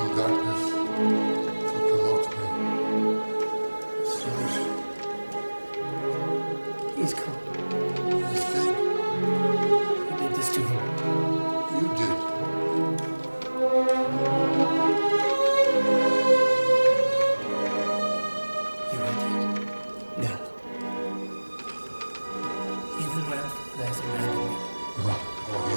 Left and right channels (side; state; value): both; inverted; correlation -1.00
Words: darkness to promote me? Solution. He's cold. He's dead. Who did this to him? You did. You are dead. Now. Even when there's abandoned me. Oh, he